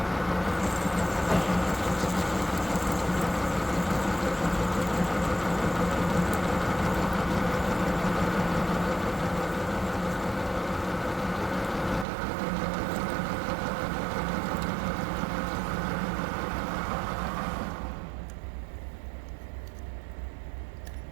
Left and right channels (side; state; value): left; drops out; at 12.1 s